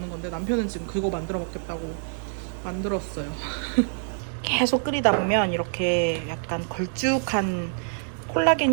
건데 남편은 지금 그거 만들어 먹겠다고 만들었어요. 계속 끓이다 보면 이렇게 약간 걸쭉한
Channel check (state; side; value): silent; left; digital silence